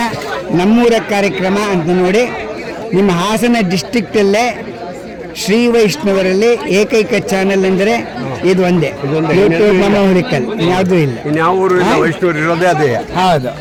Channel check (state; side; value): identical; both; correlation 1.00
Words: ನಮ್ಮೂರ ಕಾರ್ಯಕ್ರಮ ಅಂತ ನೋಡಿ. ನಿಮ್ಮ ಹಾಸನ ಡಿಸ್ಟ್ರಿಕ್ಟಲ್ಲೇ ಶ್ರೀ ವೈಷ್ಣವರಲ್ಲಿ ಏಕೈಕ ಚಾನೆಲ್ ಅಂದರೆ ಇದು ಒಂದೇ, ಯೂಟ್ಯೂಬ್ ಮಾಮ ಹುಲಿಕಲ್. ಯಾವುದೂ ಇಲ್ಲ. ಇನ್ಯಾವ ಊರು ವೈಷ್ಣವರು ಇರೋದೇ ಅದೇ. ಹೌದು.